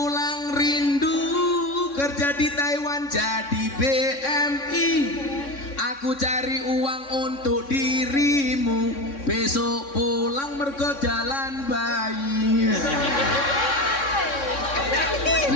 rindu, kerja di Taiwan jadi BMI. Aku cari uang untuk dirimu, besok pulang mergo jalan bayi.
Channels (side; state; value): right; late; 3.6 ms